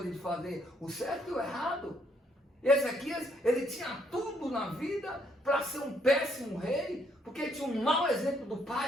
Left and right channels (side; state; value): both; normal; correlation 0.71